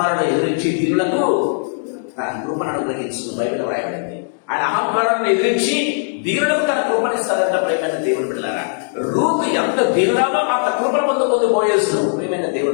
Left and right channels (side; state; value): right; silent; digital silence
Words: ఎదిరించి దీనులకు తన కృపను అనుగ్రహించిన బైబిల్ రాయబడింది. ఆయన అహంకారాన్ని ఎదిరించి దీనులకు తన కృపనిస్తారంట. ప్రేమైన దేవుని బిడ్డలారా, రూతు ఎంత దీనురాలో అంత కృపను పొందుకుంది బోయజు. ప్రేమైన